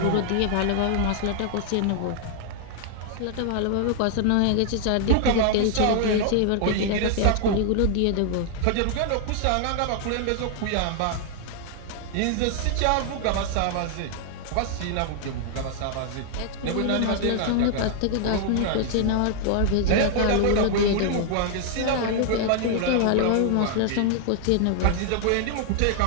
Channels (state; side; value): different; both; correlation 0.00